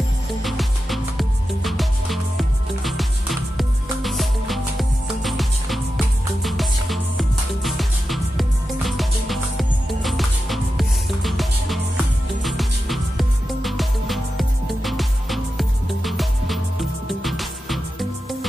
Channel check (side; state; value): both; normal; correlation 0.91